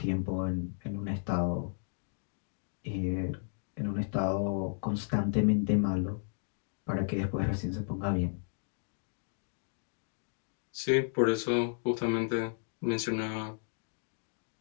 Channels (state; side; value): silent; right; digital silence